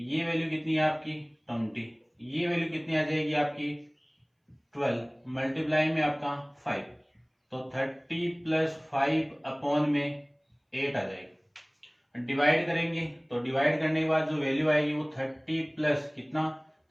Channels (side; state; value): both; identical; correlation 1.00